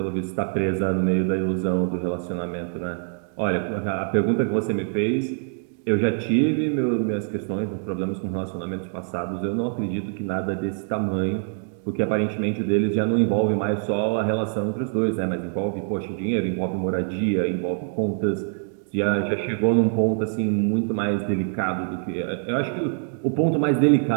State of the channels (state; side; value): silent; left; 58 dB below the other